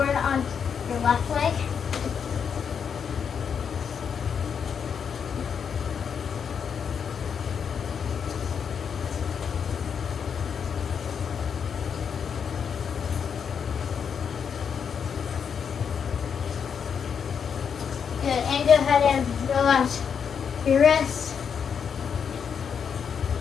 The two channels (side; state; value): right; quieter; 7.0 dB